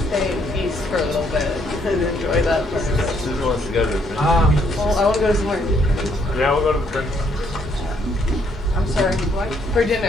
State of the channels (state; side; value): normal; both; correlation 0.70